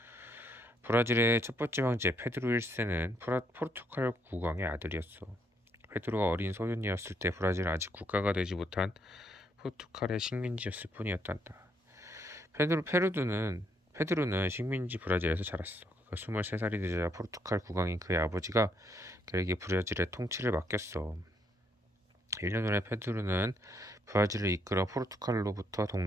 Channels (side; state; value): both; normal; correlation 0.73